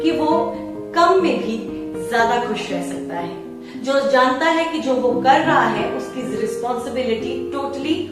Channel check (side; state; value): both; identical; correlation 1.00